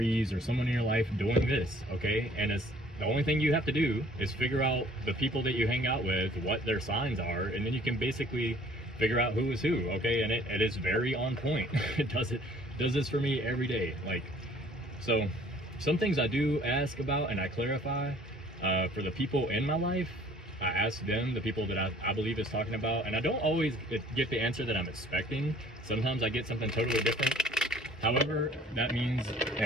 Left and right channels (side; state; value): both; normal; correlation 0.55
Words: or someone in your life doing this, okay? And it's the only thing you have to do is figure out the people that you hang out with, what their signs are, and then you can basically figure out who is who, okay? And it is very on point. It does this for me every day. Like, so some things I do ask about and I clarify for the people in my life. I ask them, the people that I believe is talking about, and I don't always get the answer that I'm expecting. Sometimes I get something totally different. However, that means,